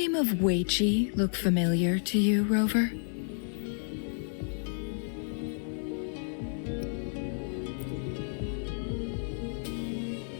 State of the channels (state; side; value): silent; right; digital silence